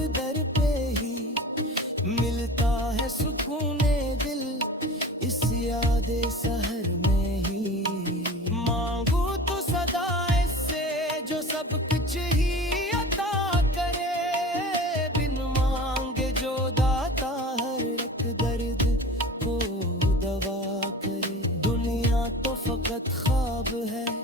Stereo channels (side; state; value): both; normal; correlation 0.37